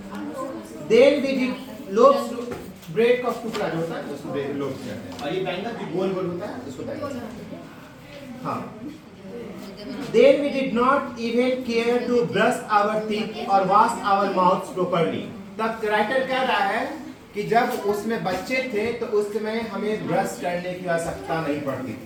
then we did loaves bread का टुकड़ा जो होता है उसको लोब्स कहते हैं। और ये बैंगल जो गोल गोल होता है उसको बैंगल्स कहते हैं। हाँ। Then we did not even care to brush our teeth or wash our mouths properly. तब राइटर कह रहा है कि जब उसमें बच्चे थे तो उस समय हमें ब्रश करने की आवश्यकता नहीं पड़ती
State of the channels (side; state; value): both; identical; correlation 1.00